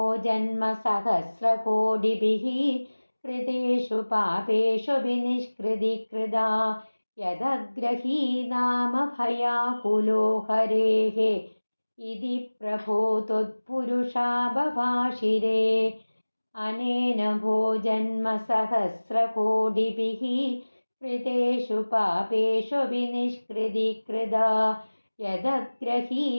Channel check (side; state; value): both; inverted; correlation -1.00